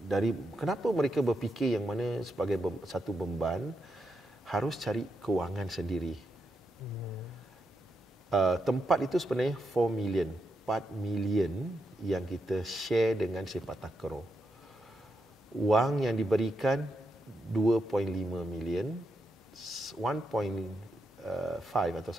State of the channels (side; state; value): both; normal; correlation 0.84